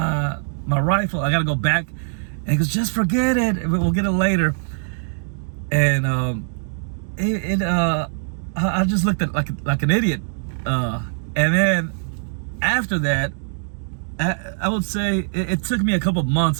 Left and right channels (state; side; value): silent; left; digital silence